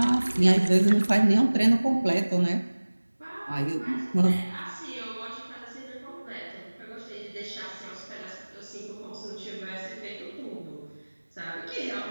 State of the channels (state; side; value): inverted; both; correlation -1.00